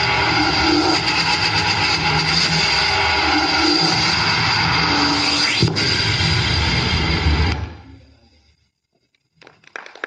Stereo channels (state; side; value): identical; both; correlation 1.00